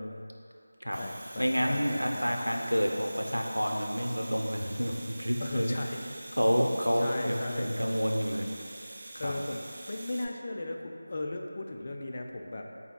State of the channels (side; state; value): both; inverted; correlation -0.99